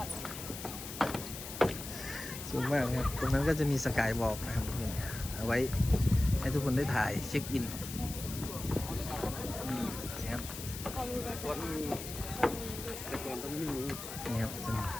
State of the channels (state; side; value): noise; left; hiss, 9 dB below the sound